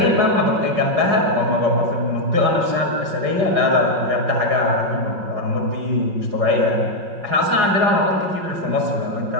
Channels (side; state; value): left; late; 5.4 ms